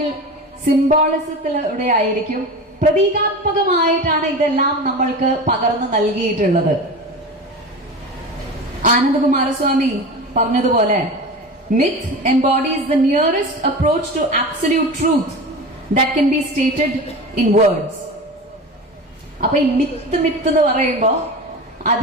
സിംബോളിസത്തിലൂടെ ആയിരിക്കും, പ്രതീകാത്മകമായിട്ടാണ് ഇതെല്ലാം നമ്മൾക്ക് പകർന്നു നൽകിയിട്ടുള്ളത്. ആനന്ദകുമാരസ്വാമി പറഞ്ഞതുപോലെ, myth embodies the nearest approach to absolute truth that can be stated in words. അപ്പൊ ഈ മിത്ത് എന്ന് പറയുമ്പോ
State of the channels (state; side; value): normal; both; correlation 0.30